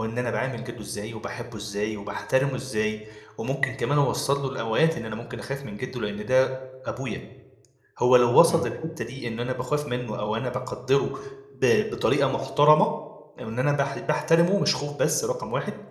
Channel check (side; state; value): both; identical; correlation 1.00